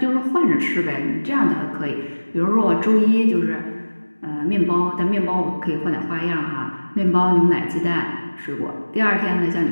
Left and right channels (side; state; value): both; inverted; correlation -1.00